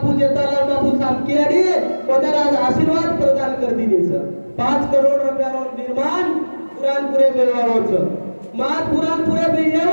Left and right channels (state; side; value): inverted; both; correlation -1.00